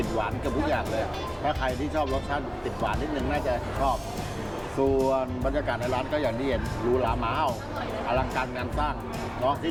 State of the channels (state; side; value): identical; both; correlation 1.00